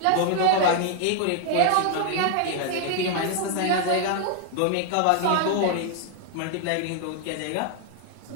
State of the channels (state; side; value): different; both; correlation 0.00